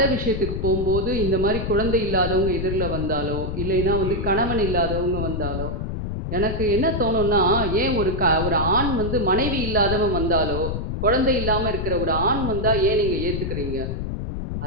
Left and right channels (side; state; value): left; noise; rumble, 3 dB below the sound